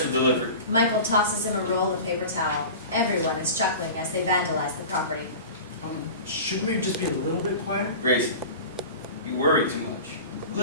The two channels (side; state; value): both; inverted; correlation -0.34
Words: delivery. Michael tosses him a roll of paper towel. Everyone is chuckling as they vandalize the property. Shouldn't we just be a little bit quieter? Grayson, you worry too much.